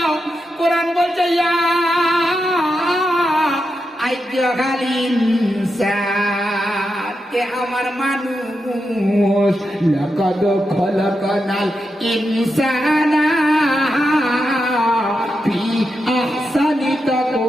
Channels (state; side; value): normal; both; correlation 0.87